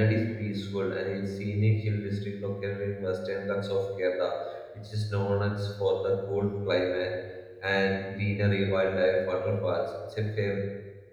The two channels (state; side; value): identical; both; correlation 1.00